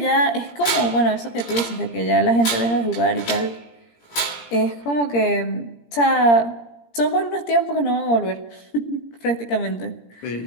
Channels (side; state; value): right; late; 17 ms